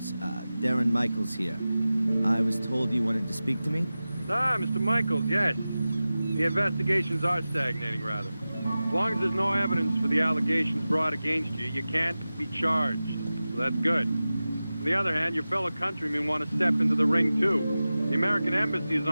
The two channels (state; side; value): inverted; both; correlation -0.95